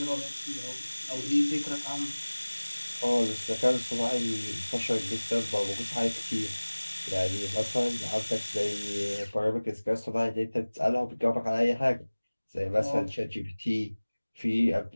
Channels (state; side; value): inverted; both; correlation -1.00